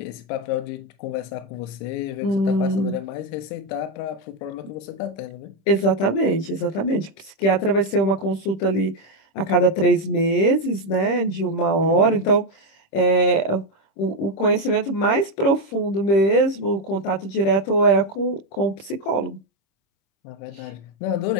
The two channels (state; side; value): late; right; 25 ms